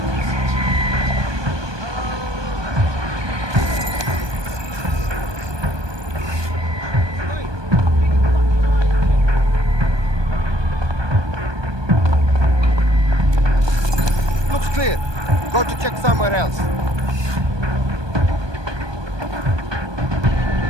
Looks clear. Go to check somewhere else.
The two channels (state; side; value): late; left; 1.2 ms